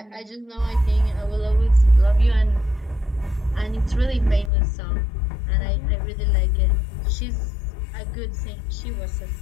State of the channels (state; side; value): drops out; right; at 4.5 s